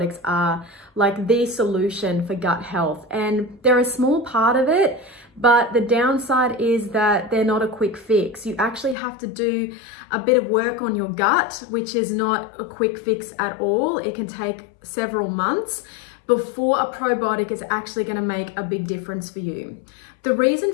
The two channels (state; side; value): drops out; right; at 9.0 s